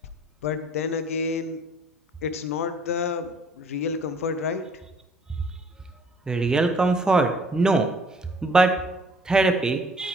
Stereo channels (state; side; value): normal; both; correlation 0.58